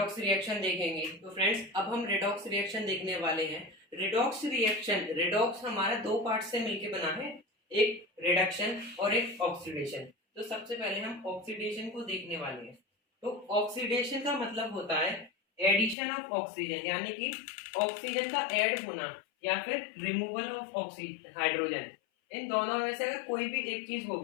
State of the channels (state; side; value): drops out; right; at 16.0 s